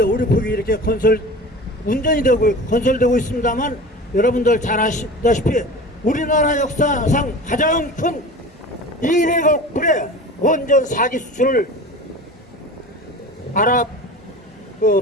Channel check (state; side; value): normal; both; correlation 0.35